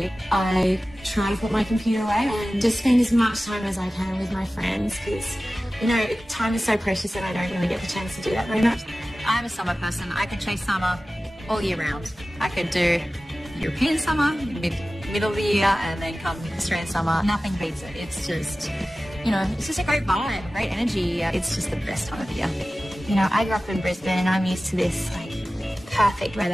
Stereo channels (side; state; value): both; normal; correlation 0.96